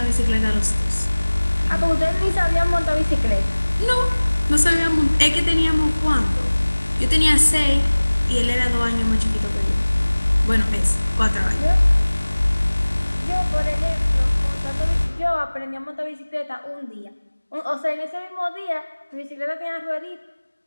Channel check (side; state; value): both; inverted; correlation -1.00